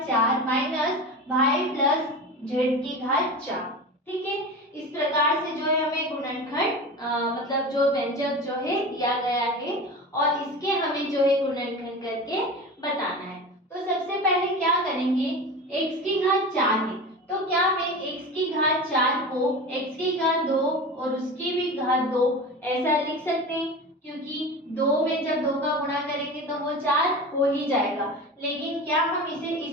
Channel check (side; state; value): both; normal; correlation 0.30